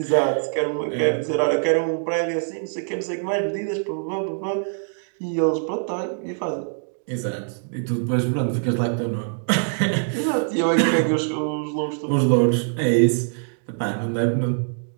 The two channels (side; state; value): left; silent; digital silence